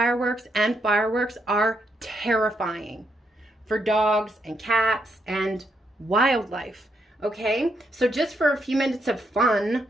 and fireworks are terrifying for dogs and cats and wildlife. Okay, so just for a few minutes of fun,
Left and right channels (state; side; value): normal; both; correlation 0.77